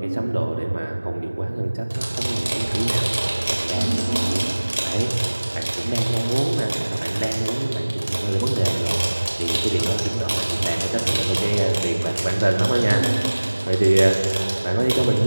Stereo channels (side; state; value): both; inverted; correlation -1.00